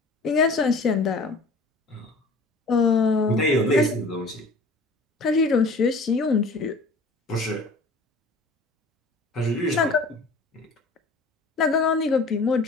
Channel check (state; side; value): quieter; right; 3.1 dB